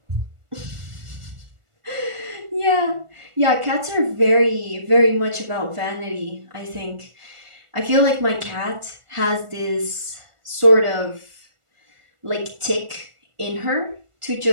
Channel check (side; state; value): left; late; 1.4 ms